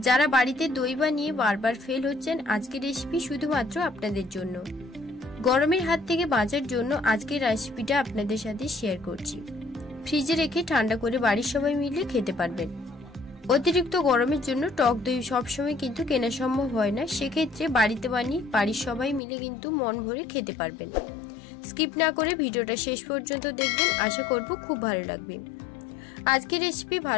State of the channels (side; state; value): right; drops out; at 19.2 s